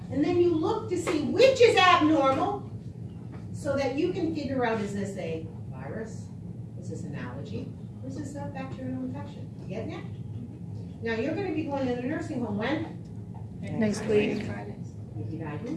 And then you look to see which is abnormal so that you can figure out, is this a virus? Is this an allergy? Or is this a bacterial infection? You getting it? Now you're going to be going to the nursing home when? Next week.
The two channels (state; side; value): identical; both; correlation 1.00